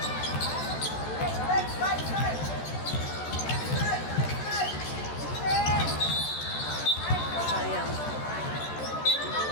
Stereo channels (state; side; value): late; right; 14 ms